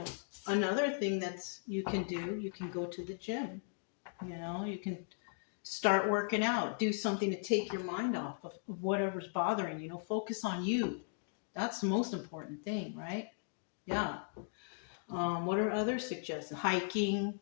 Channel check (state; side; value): silent; right; digital silence